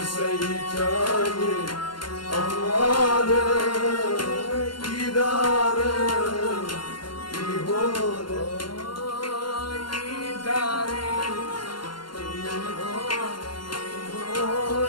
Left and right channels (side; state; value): right; late; 0.72 ms